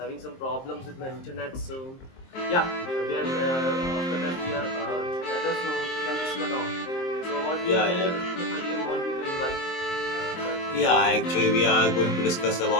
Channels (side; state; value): right; late; 23 ms